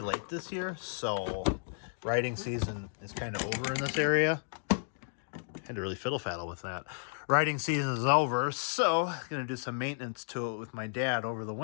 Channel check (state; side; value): silent; right; digital silence